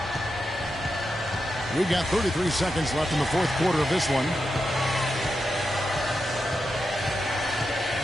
We've got 33 seconds left in the fourth quarter of this one.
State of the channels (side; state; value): both; normal; correlation 0.87